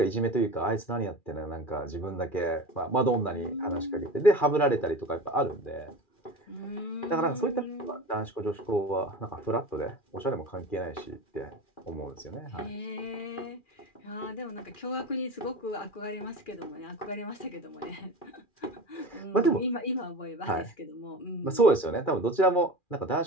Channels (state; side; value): late; right; 2.4 ms